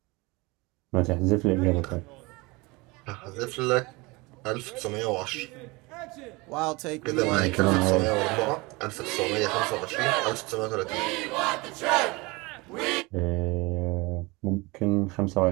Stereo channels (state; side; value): quieter; left; 24.6 dB